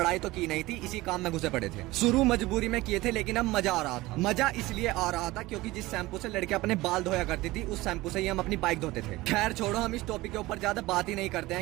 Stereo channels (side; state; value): left; quieter; 19.3 dB